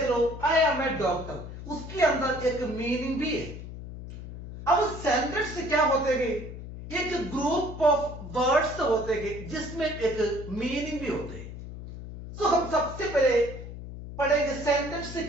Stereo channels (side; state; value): left; noise; hum, 11 dB below the sound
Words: लो, आई एम ए डॉक्टर, उसके अंदर एक मीनिंग भी है। अब सेंटेंस से क्या होते हैं? एक ग्रुप ऑफ वर्ड्स होते हैं जिसमें एक मीनिंग भी होते हैं। तो हम सबसे पहले पढ़ेंगे सेंटेंस से